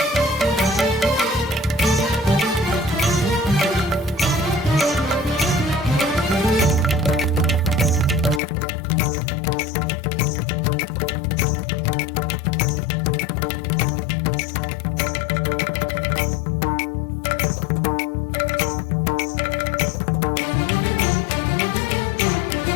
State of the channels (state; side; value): drops out; right; at 8.4 s